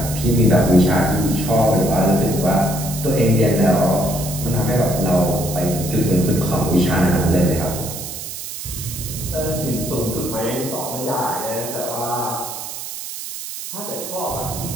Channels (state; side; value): noise; right; hiss, 8 dB below the sound